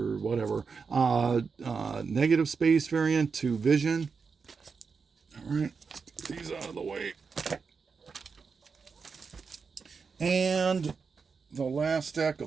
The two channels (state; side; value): quieter; left; 5.3 dB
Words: whatever. Negative space variant to Vision. All right, let's get these out of the way. And the last stack